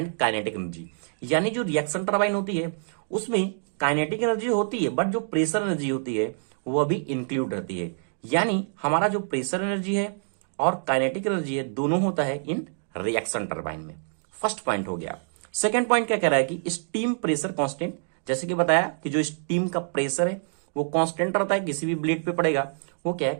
kinetic energy, यानी जो रिएक्शन टरबाइन होती है उसमें काइनेटिक एनर्जी होती है बट जो प्रेशर एनर्जी होती है वो भी इंक्लूड रहती है। यानी हमारा जो प्रेशर एनर्जी है और काइनेटिक एनर्जी है दोनों होता है इन रिएक्शन टरबाइन में। फर्स्ट पॉइंट हो गया। सेकेंड पॉइंट क्या कह रहा है कि स्टीम प्रेशर कांस्टेंट, जैसे कि बताया कि जो स्टीम का प्रेशर है वो कांस्टेंट रहता है, किसी भी ब्लेड पे पड़ेगा वो क्या है,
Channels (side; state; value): left; silent; digital silence